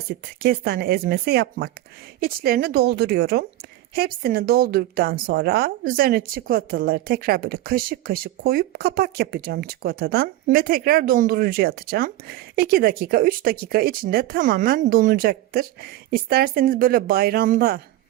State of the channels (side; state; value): left; quieter; 15.2 dB